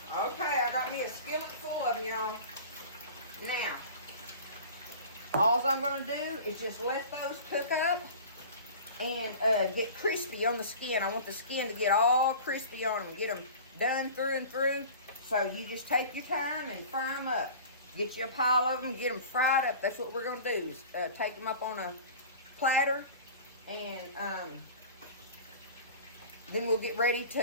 Okay, I got me a skillet full of them, y'all. Now, all I'm going to do is just let those cook up and get crispy on the skin. I want the skin to get all crispy on them, get them done through and through. So you just take your time and fry them up. Get you a pile of them, get them fried up. That's what we're going to do, is take them up on a platter, and then we'll get ready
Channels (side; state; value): both; inverted; correlation -0.39